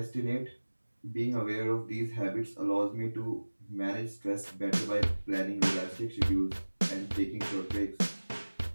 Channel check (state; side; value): inverted; both; correlation -1.00